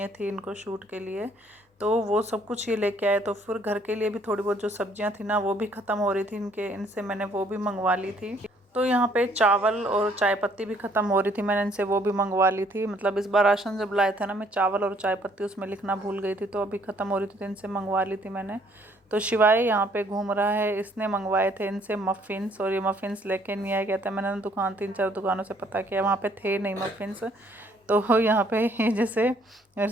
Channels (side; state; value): both; normal; correlation 0.64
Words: थी इनको शूट के लिए, तो वो सब कुछ ये लेके आए। तो फिर घर के लिए भी थोड़ी बहुत जो सब्जियां थी ना वो भी ख़त्म हो रही थी इनसे मैंने वो भी मंगवा ली थी। तो यहाँ पे चावल और चाय पत्ती भी ख़त्म हो रही थी, मैंने इनसे वो भी मंगवा ली थी। मतलब इस बार राशन जब लाए थे ना, मैं चावल और चाय पत्ती उसमें लिखना भूल गई थी, तो अभी ख़त्म हो रही थी तो इनसे मंगवा ली थी मैंने। तो शिवाय यहाँ पे घूम रहा है, इसने मंगवाए थे इनसे मफ़िन्स, और ये मफ़िन्स लेके नहीं आया। कहता है मैंने ना दुकान 3-4 दुकानों से पता किया, वहाँ पे थे नहीं मफ़िन्स। तो यहाँ पे जैसे मेरे